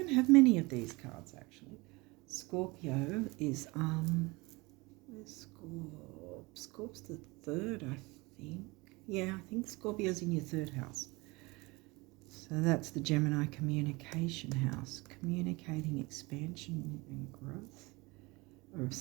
have many of these cards actually. Scorpio is where's Scorp's the 3rd, I think. Yeah, I think Scorpio's in your 3rd house. So that's the Gemini communication house, communicating expansion and growth, or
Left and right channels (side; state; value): left; quieter; 24.3 dB